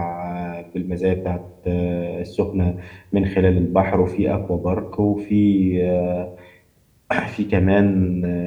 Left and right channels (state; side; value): identical; both; correlation 1.00